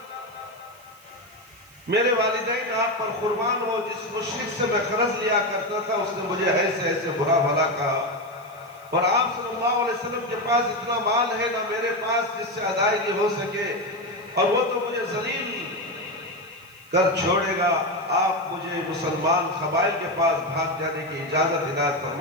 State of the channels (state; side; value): noise; right; hiss, 26 dB below the sound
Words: میرے والدین آپ پر قربان ہو. جس مشرک سے میں قرض لیا کرتا تھا اس نے مجھے ایسے ایسے برا بھلا کہا. اور آپ صلی اللہ علیہ وسلم کے پاس اتنا مال ہے نہ میرے پاس جس سے ادائیگی ہو سکے، اور وہ تو مجھے ذلیل کر چھوڑے گا، آپ مجھے مسلمان قبائل کے پاس بھاگ جانے کی اجازت عنایت